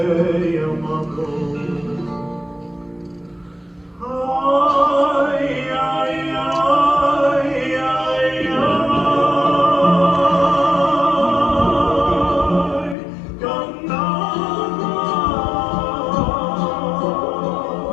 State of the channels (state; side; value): drops out; right; at 13.0 s